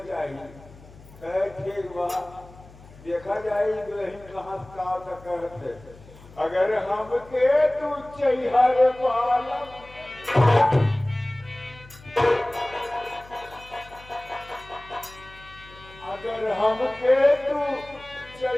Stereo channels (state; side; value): noise; left; hum, 21 dB below the sound